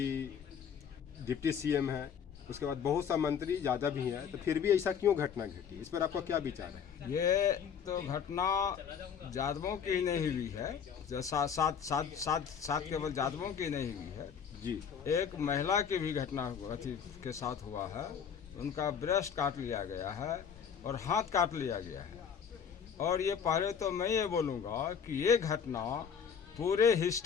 डिप्टी सीएम है, उसके बाद बहुत सा मंत्री यादव भी हैं, तो फिर भी ऐसा क्यों घटना घटी, इस पर आपका क्या विचार है? ये तो घटना यादवों की नहीं हुई है, जो सात केवल यादवों की नहीं हुई है जी। एक महिला की भी घटना अथी के साथ हुआ है। उनका ब्रेस्ट काट लिया गया है और हाथ काट लिया गया है। और ये पहले तो मैं ये बोलूँगा कि ये घटना पूरे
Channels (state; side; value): quieter; right; 7.3 dB